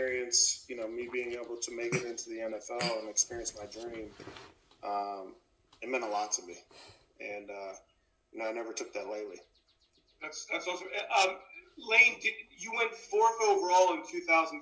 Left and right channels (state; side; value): identical; both; correlation 1.00